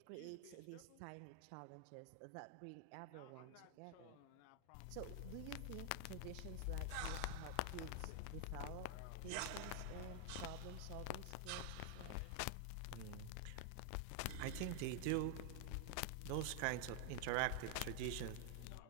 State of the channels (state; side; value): different; both; correlation 0.00